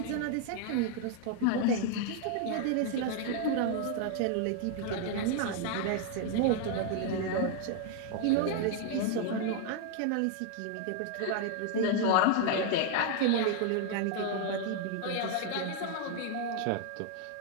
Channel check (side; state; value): both; different; correlation 0.00